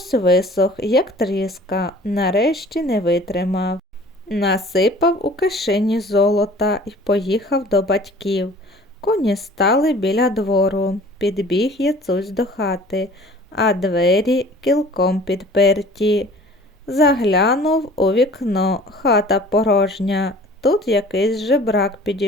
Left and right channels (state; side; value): normal; both; correlation 0.48